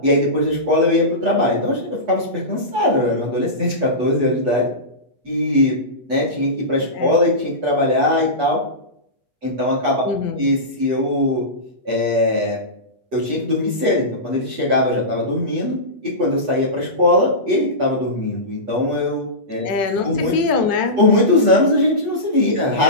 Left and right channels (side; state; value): left; late; 8.2 ms